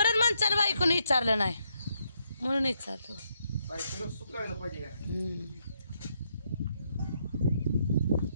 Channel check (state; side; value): inverted; both; correlation -0.77